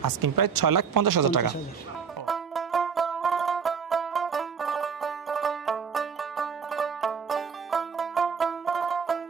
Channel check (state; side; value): quieter; left; 6.3 dB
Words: আস্কিং প্রাইস 6,50,000 টাকা।